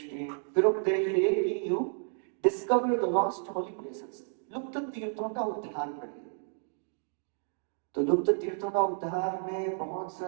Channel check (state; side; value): silent; left; 57 dB below the other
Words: दिए, फिर उपदेश दिए कि you discover the lost Holi places, लुप्त तीर्थों का उद्धार करिए। तो लुप्त तीर्थों का उद्धार में बहुत